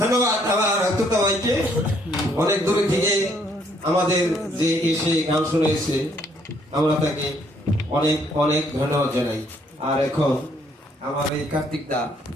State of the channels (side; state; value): both; normal; correlation 0.67